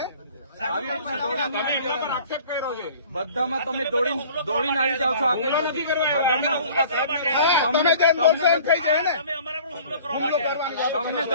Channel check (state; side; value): inverted; both; correlation -0.49